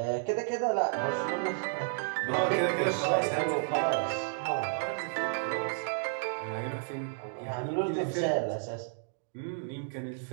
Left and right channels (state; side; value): silent; left; digital silence